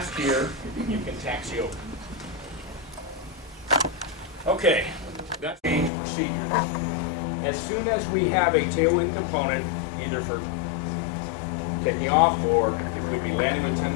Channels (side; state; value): right; drops out; at 5.9 s